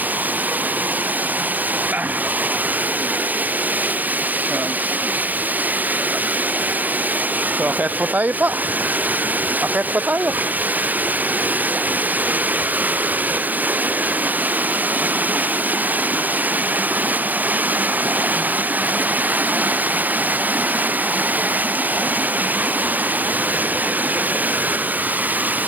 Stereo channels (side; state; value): left; late; 0.086 ms